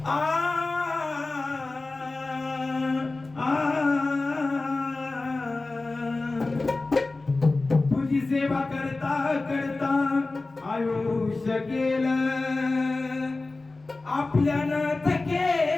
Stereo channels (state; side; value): quieter; right; 3.4 dB